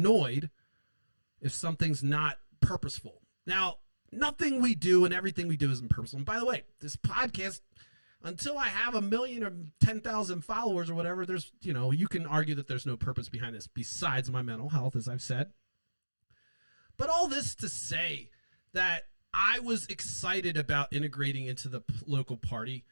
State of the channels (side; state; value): both; inverted; correlation -1.00